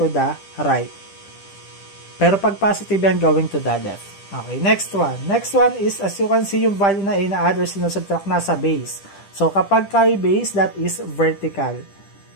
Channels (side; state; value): right; late; 10 ms